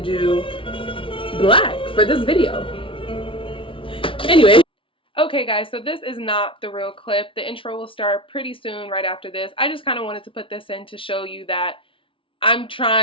do black for this video. Anyway. Okay guys, so this is not the real clip. The intro will start pretty soon right after this. I just kind of wanted to put this in to show you that I'm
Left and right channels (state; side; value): late; right; 0.25 ms